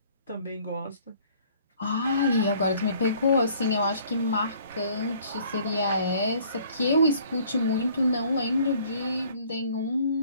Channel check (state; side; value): inverted; both; correlation -0.57